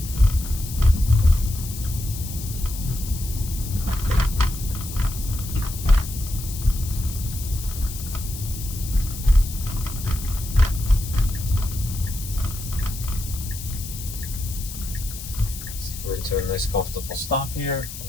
We're into a nice comfortable stop here. We're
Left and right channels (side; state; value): left; noise; hiss, 11 dB below the sound